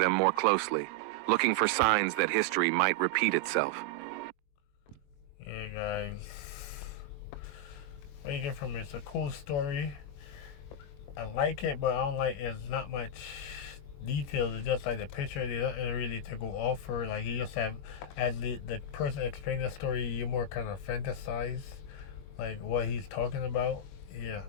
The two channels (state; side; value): late; right; 21 ms